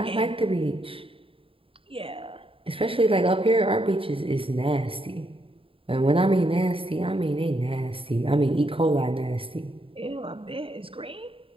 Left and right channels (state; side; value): late; left; 0.27 ms